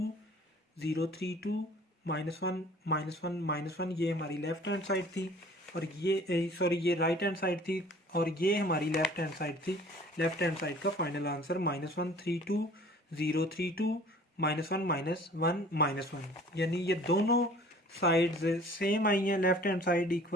0 3 2 -1 ये हमारी लेफ्ट हैंड साइड थी, और ये सॉरी ये राइट हैंड साइड थी, और ये हमारी लेफ्ट हैंड साइड थी। लेफ्ट हैंड साइड का फाइनल आंसर -1 3 2 0 3 2 -1 -1 यानी ये दोनों साइड्स सेम आई हैं, लेफ्ट हैंड साइड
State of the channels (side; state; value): both; normal; correlation 0.50